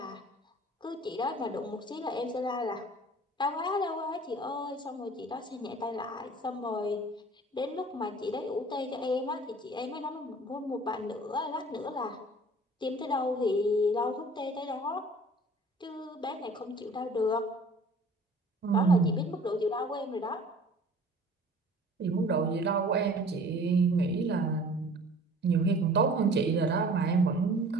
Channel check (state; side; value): normal; both; correlation 0.48